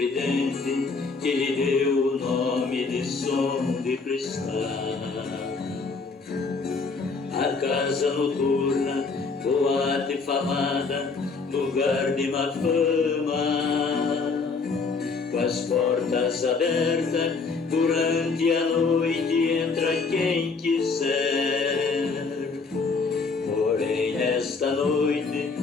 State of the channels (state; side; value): quieter; right; 4.4 dB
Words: que lhe deu o nome de som de cristal. A casa noturna, boate falada, lugar de má fama, com as portas abertas durante a noite entra quem quiser. Porém nesta noite,